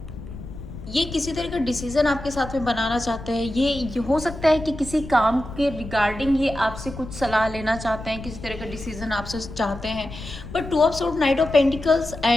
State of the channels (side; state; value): left; noise; rumble, 12 dB below the sound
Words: ये किसी तरह का डिसीजन आपके साथ में बनाना चाहते हैं। ये हो सकता है कि किसी काम के रिगार्डिंग ये आपसे कुछ सलाह लेना चाहते हैं, किसी तरह का डिसीजन आपसे चाहते हैं, but 2 of sword, night of pentacles